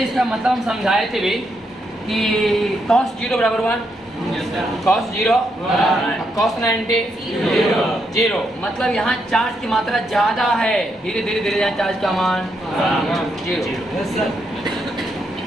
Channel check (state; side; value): normal; both; correlation 0.79